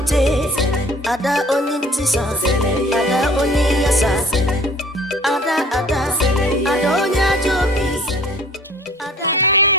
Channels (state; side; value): normal; both; correlation 0.50